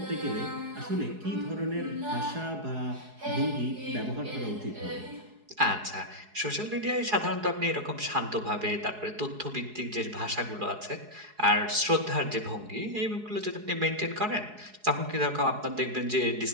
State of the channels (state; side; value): late; left; 4.8 ms